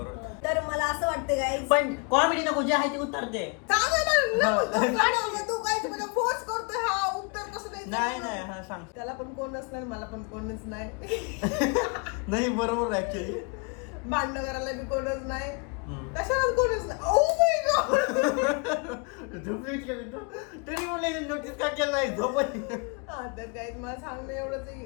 तर मला असं वाटतं गाईज, पण कॉमेडी नको, जे आहे ते उत्तर दे. तू काय फोर्स करतोय हा उत्तर कसं नाही नाही हा सांग. त्याला पण कोणच नाही, मला पण कोणच नाही. नाही बरोबर ऍक्च्युअली. भांडण करायला बी कोणच नाही, कशाला कोणच नाही. Oh my God. तरी म्हणले नोटीस का केलं नाही झोप. हा तर काय मला सांगणं एवढंच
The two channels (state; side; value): quieter; right; 32.5 dB